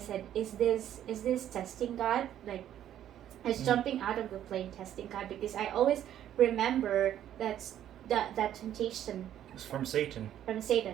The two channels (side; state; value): left; quieter; 11.1 dB